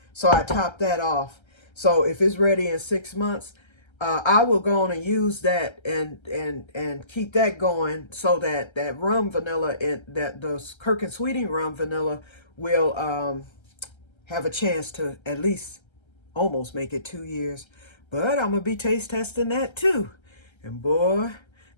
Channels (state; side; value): late; right; 1.3 ms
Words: So I topped that off. So if it's ready in 6 months, I will go on and use that and keep that going so that that rum vanilla and that those Kirk and Sweeting rum vanilla will have a chance to at least almost make it 2 years. But I'm gonna be taste testing that too, and boy,